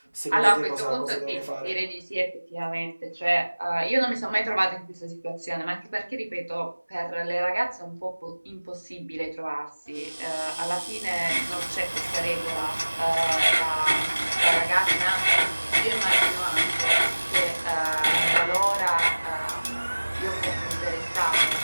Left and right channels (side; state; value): both; inverted; correlation -1.00